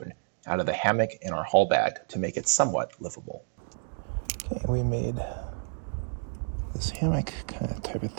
out of the hammock in our haul bag to make it somewhat livable. Okay, we made this hammock kind of type of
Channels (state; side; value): silent; left; digital silence